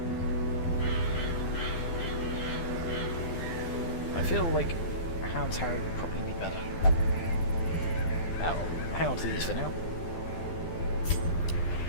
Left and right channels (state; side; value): late; right; 12 ms